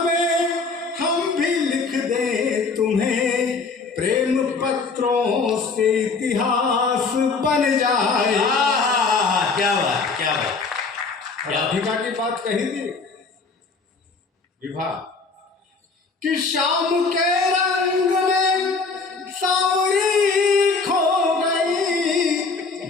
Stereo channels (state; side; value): quieter; right; 4.4 dB